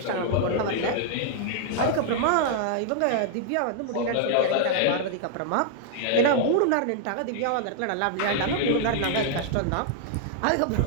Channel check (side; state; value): both; different; correlation -0.01